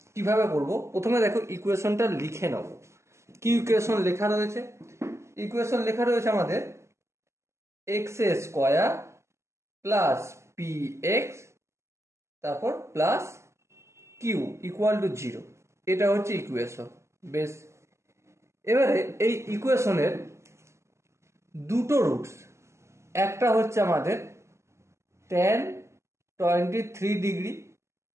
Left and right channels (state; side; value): late; left; 0.13 ms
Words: কিভাবে করব, প্রথমে দেখো ইকুয়েশনটা লিখে নেব। কি ইকুয়েশন লেখা রয়েছে, ইকুয়েশন লেখা রয়েছে আমাদের x স্কয়ার প্লাস px তারপর প্লাস কিউ ইকুয়াল টু 0, এটা হচ্ছে ইকুয়েশন। বেশ, এবারে এই ইকুয়েশনের দুটো রুটস, একটা হচ্ছে আমাদের tan 23 ডিগ্রি